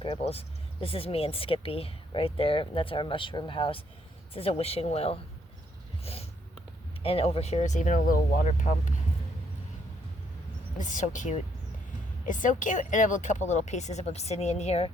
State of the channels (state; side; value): normal; both; correlation 0.71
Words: This is me and Skippy right there. That's our mushroom house. This is a wishing well. And over here is even a little water pump. It's so cute. It's so cute. And I have a couple little pieces of obsidian here.